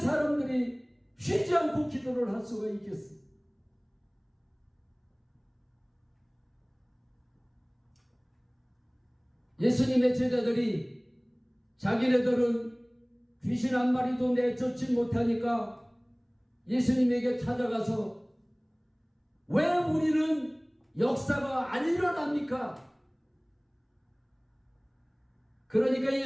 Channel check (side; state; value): both; identical; correlation 1.00